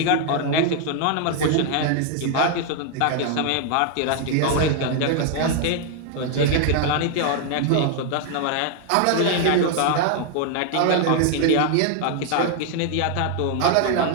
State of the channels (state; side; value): different; both; correlation 0.00